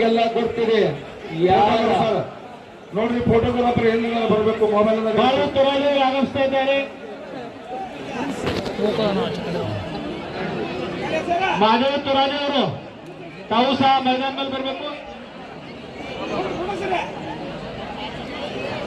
ಗೊತ್ತಿದೆ. ಯಾರ ನೋಡ್ರಿ ಫೋಟೋಗ್ರಾಫರ್ ಎಲ್ಲಿ ಬರಬೇಕು ಮೊಬೈಲ್ ಬಾಳು ತುರಾದಿ ಆಗಮಿಸ್ತಾ ಇದ್ದಾರೆ. ಮಾಧವ ತುರಾದಿ ಅವರು ತಾವು ಸಹ ಮೈದಾನದಲ್ಲಿ ಬರಬೇಕು.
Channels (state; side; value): identical; both; correlation 1.00